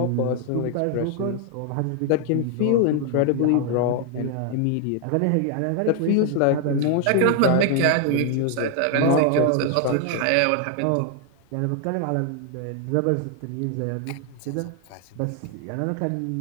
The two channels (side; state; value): both; different; correlation 0.00